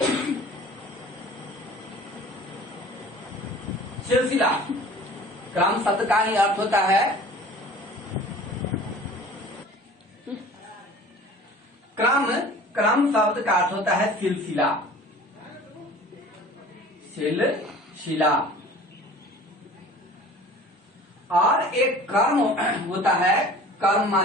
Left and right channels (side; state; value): both; normal; correlation 0.45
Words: सिलसिला, क्रम शब्द का ही अर्थ होता है क्रम, क्रम शब्द का अर्थ होता है सिलसिला, सिलसिला। और एक कर्म होता है, कर्म